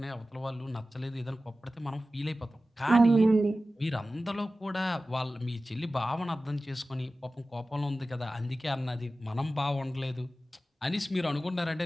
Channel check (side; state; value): both; normal; correlation 0.95